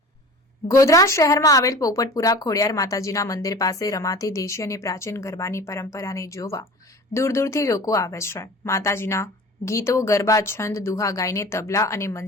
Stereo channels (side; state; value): both; normal; correlation 0.39